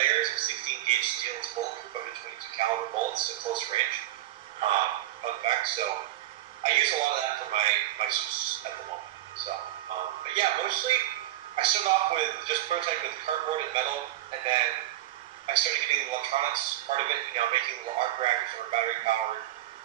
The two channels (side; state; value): left; quieter; 14.7 dB